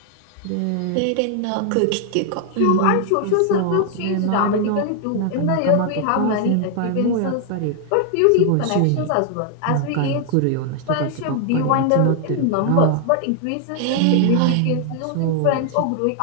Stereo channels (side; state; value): both; different; correlation 0.00